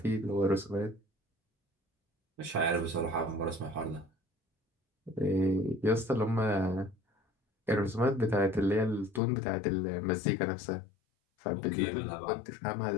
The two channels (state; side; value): drops out; right; at 9.2 s